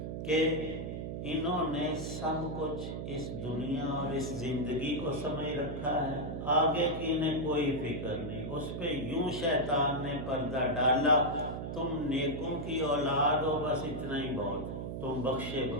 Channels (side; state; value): right; noise; hum, 5 dB below the sound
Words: کہ انہوں نے سب کچھ اس دنیا اور اس زندگی کو سمجھ رکھا ہے، آگے کی انہیں کوئی فکر نہیں. اس پہ یوں شیطان نے پردہ ڈالا، تم نیکوں کی اولاد ہو، بس اتنا ہی بہت ہے، تم بخشے.